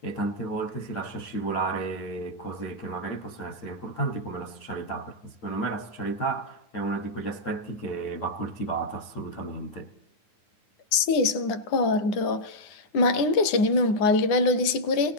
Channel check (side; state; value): right; late; 9.5 ms